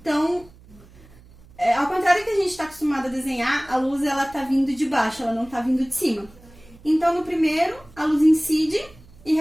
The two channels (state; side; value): noise; right; hum, 24 dB below the sound